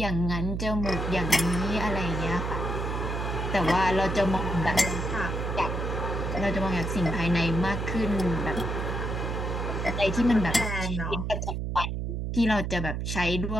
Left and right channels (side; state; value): right; noise; hum, 2 dB below the sound